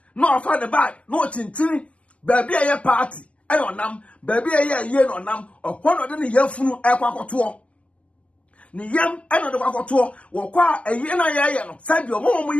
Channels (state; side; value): late; right; 0.063 ms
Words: no afa the bag no tintini baby aye party ayonam baby aye no nam okwono de ne yafunu ekwakoto ni yam eno de kwakoto wo kwa aye na ye no sabi omo